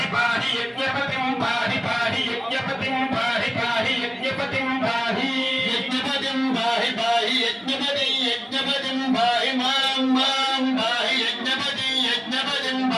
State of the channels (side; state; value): both; identical; correlation 1.00